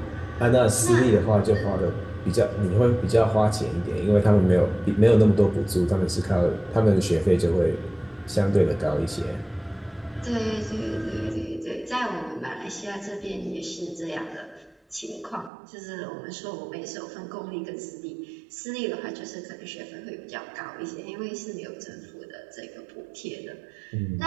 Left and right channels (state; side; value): drops out; left; at 15.5 s